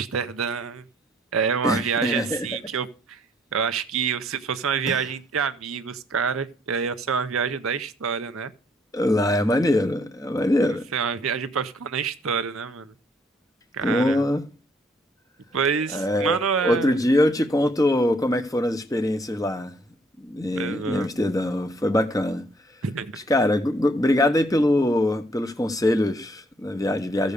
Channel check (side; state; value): both; normal; correlation 0.65